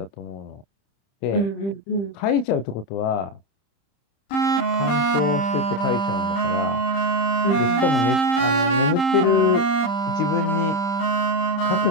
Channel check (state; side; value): late; right; 30 ms